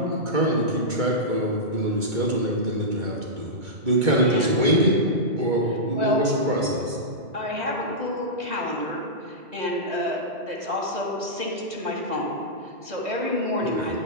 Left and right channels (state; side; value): late; left; 2.2 ms